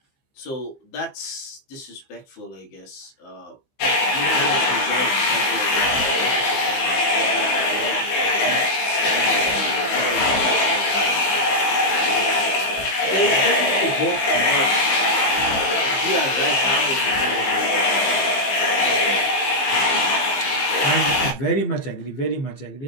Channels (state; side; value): late; right; 15 ms